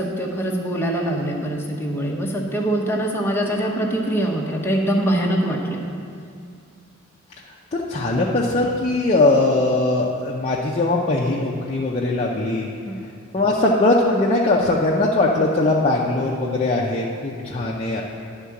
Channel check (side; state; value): both; normal; correlation 0.34